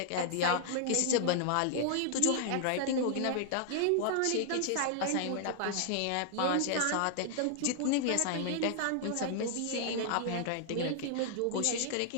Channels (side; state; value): both; different; correlation -0.01